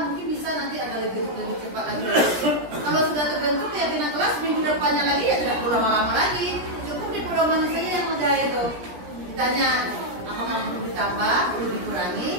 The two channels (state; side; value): late; left; 17 ms